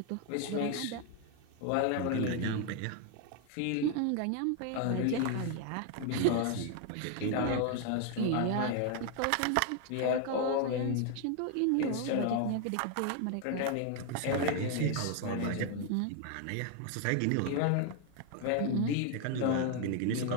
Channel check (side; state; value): both; different; correlation 0.00